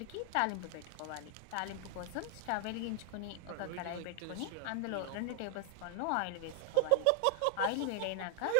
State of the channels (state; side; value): different; both; correlation 0.00